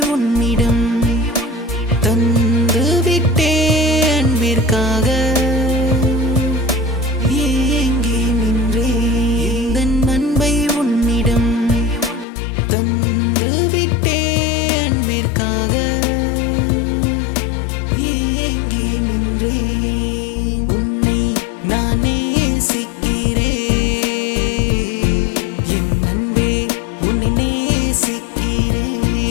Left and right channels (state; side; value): drops out; right; at 12.2 s